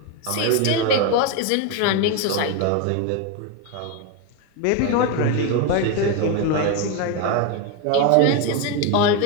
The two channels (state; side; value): different; both; correlation 0.02